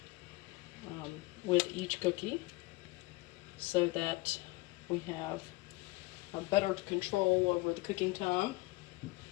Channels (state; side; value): quieter; right; 22.3 dB